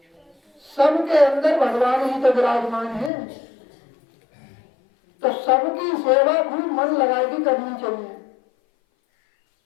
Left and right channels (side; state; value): right; drops out; at 3.1 s